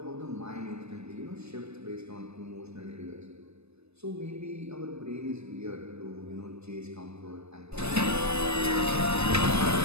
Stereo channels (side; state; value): left; late; 0.80 ms